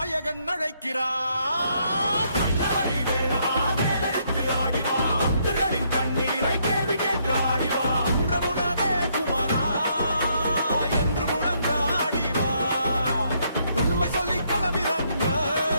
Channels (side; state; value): both; inverted; correlation -0.72